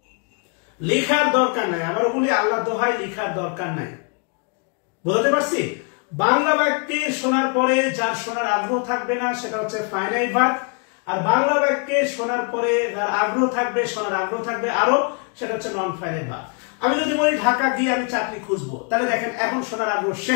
লিখার দরকার নাই, আবারও বলি, আল্লাহর দোহাই লিখার দরকার নাই। বুঝতে পারছি? বাংলা বাক্যে শোনার পরে যার শোনার আগ্রহ থাকবে না, সেটা হচ্ছে ফাইনাইট ভাগ। আর বাংলা বাক্যে শোনার পরে যার আগ্রহ থাকবে, শোনার আগ্রহ থাকবে আরো, সেটা হচ্ছে নন ফাইনাইট ভাগ। আমি যদি বলি ঢাকা গিয়ে আমি চাকরি খুঁজবো, তাহলে দেখেন এখন শোনার আগ্রহ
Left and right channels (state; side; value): quieter; right; 38.0 dB